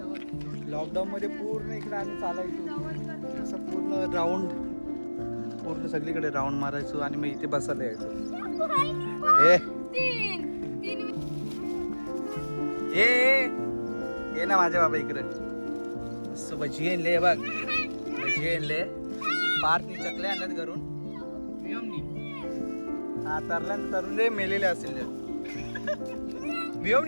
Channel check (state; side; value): inverted; both; correlation -1.00